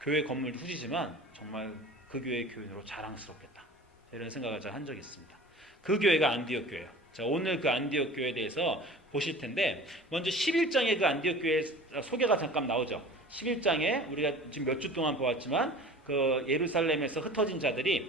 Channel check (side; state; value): both; normal; correlation 0.41